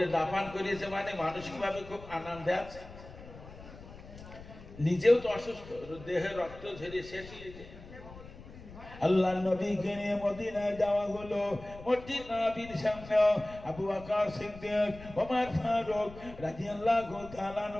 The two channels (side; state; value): left; noise; rumble, 16 dB below the sound